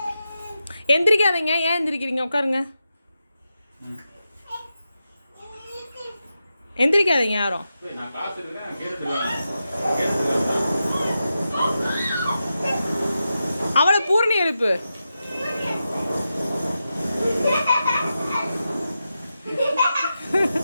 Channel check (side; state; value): both; inverted; correlation -0.89